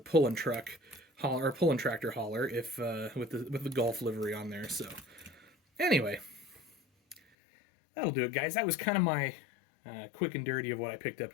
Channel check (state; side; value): drops out; right; at 7.2 s